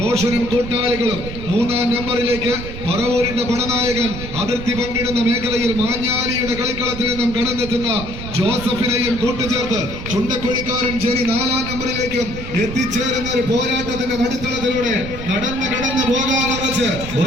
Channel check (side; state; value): right; noise; rumble, 9 dB below the sound